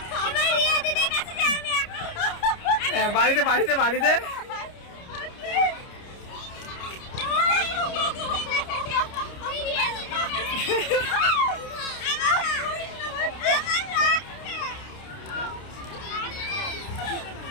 বাড়িতে বাড়িতে বাড়িতে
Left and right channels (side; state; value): right; late; 29 ms